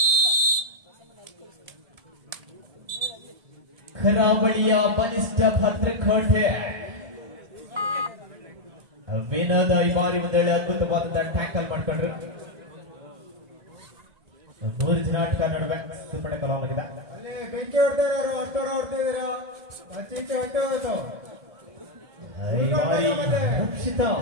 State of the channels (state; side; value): late; left; 1.7 ms